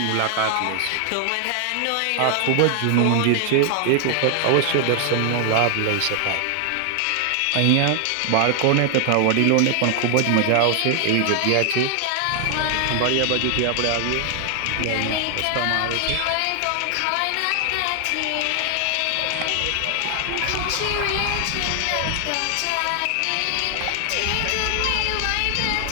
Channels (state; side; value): different; both; correlation 0.00